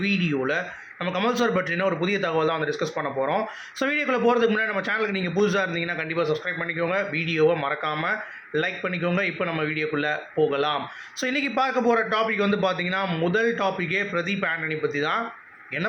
வீடியோவில் நம்ம கமல் சார் பற்றின ஒரு புதிய தகவல் தான் வந்து டிஸ்கஸ் பண்ண போகிறோம். ஸோ வீடியோக்குள்ளே போகிறதுக்கு முன்னாடி நம்ம சேனலுக்கு நீங்கள் புதுசாக இருந்தீங்கன்னா கண்டிப்பாக சப்ஸ்கிரைப் பண்ணிக்கோங்க, வீடியோவை மறக்காமல் லைக் பண்ணிக்கோங்க. இப்போ நம்ம வீடியோக்குள்ளே போகலாம். ஸோ இன்றைக்கி பார்க்க போகிற டாபிக் வந்து பார்த்தீங்கன்னா முதல் டாப்பிக்கே பிரதீப் ஆண்டனி பற்றி தான்.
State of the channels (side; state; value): both; identical; correlation 1.00